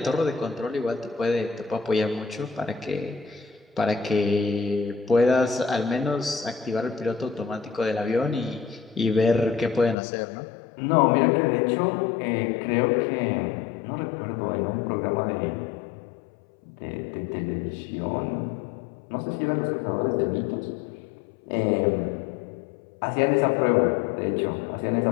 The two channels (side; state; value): right; drops out; at 10.0 s